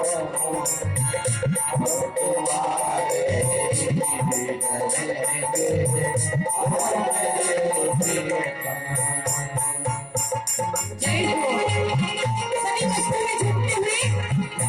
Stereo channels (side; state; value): both; identical; correlation 1.00